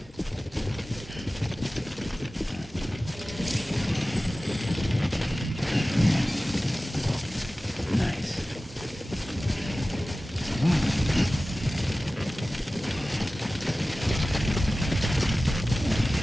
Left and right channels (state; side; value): normal; both; correlation 0.96